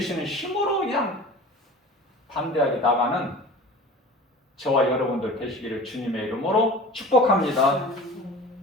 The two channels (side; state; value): both; normal; correlation 0.39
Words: 힘으로 그냥 담대하게 나가는 저와 여러분들 되시기를 주님의 이름으로 축복합니다.